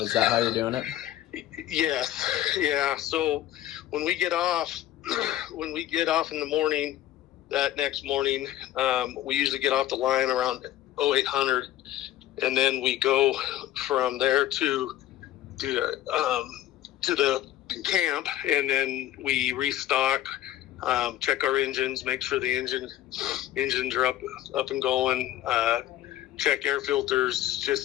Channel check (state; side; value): quieter; right; 13.4 dB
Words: that how you're doing it? Yes. Yeah. So when we get off in the morning, that next morning, we usually get off the line around 0800, and then we go from there to the camp, and then we restock, check our engines, make sure the engines are up and going, check air filters,